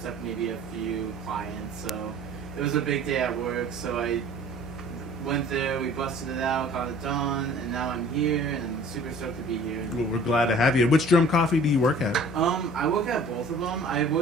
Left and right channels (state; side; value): normal; both; correlation 0.49